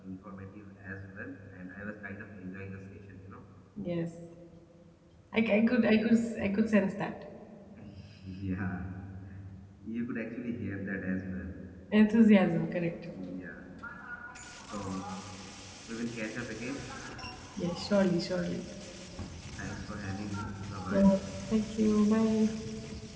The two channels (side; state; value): both; identical; correlation 1.00